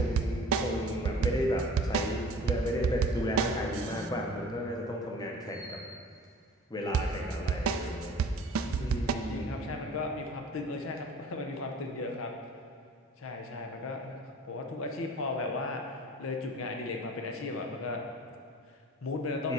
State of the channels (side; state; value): both; normal; correlation 0.45